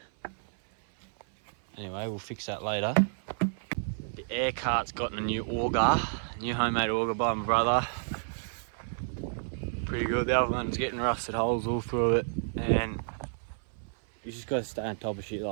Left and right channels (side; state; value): left; silent; 56 dB below the other